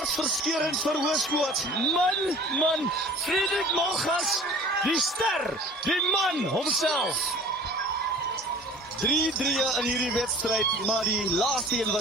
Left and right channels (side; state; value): both; normal; correlation 0.46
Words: vir Hoërskoot. Man, Frederik Malgas, die ster, die man homself. 3-3 in hierdie wedstryd, maar die laaste een